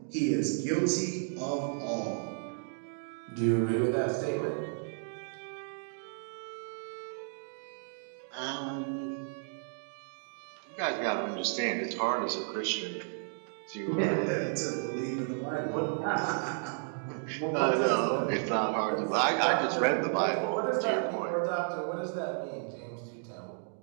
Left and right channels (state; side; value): silent; left; 56 dB below the other